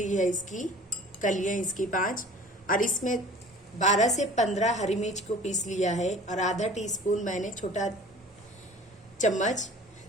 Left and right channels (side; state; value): both; normal; correlation 0.45